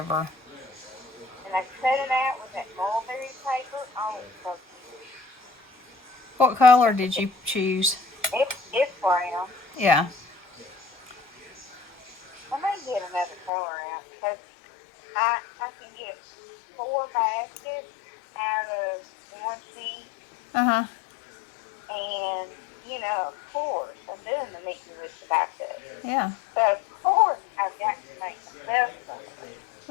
And I cut it out with that mulberry paper. Oh, it's so cute. What color did you choose? It's brown. Yeah. I may get another color out because I can get 4 baskets out of one sheet. Uh-huh. And, of course, I'm doing the meet and with the backup. Yeah. So, of course, I've got to make myself something.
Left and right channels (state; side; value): drops out; right; at 13.5 s